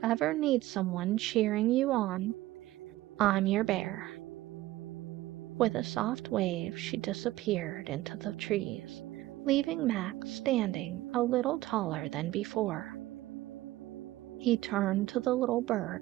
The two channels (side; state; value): left; quieter; 16.6 dB